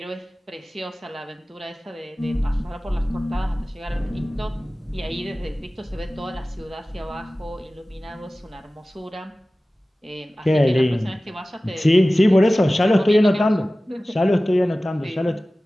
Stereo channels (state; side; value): normal; both; correlation 0.97